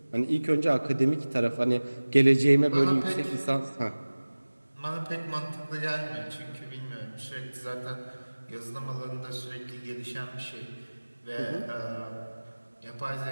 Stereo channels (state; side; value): inverted; both; correlation -1.00